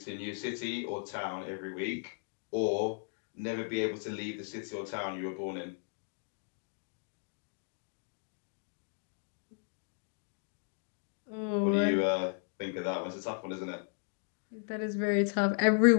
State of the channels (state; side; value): silent; right; 54 dB below the other